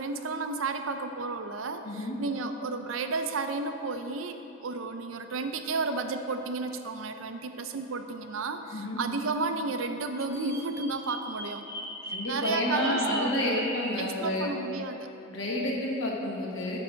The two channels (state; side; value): normal; both; correlation 0.04